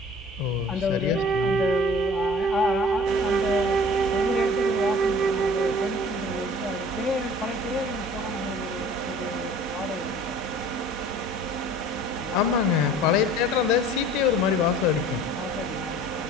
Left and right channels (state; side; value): normal; both; correlation 0.47